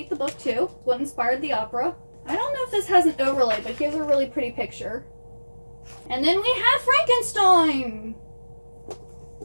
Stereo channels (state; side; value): inverted; both; correlation -1.00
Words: the book too. It's what inspired the opera. I don't know if this has an overlay, but here's a really pretty picture. And then we have Frankenstein.